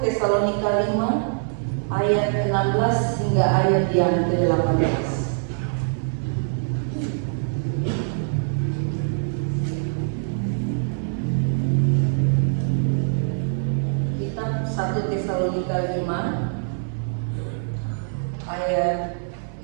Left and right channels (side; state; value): left; silent; 63 dB below the other